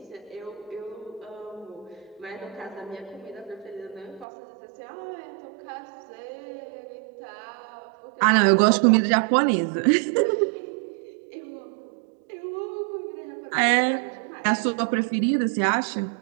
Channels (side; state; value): left; drops out; at 4.2 s